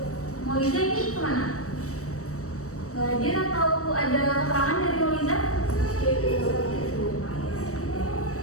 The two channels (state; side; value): late; right; 0.65 ms